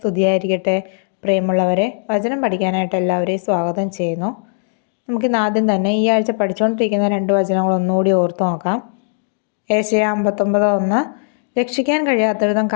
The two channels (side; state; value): right; silent; digital silence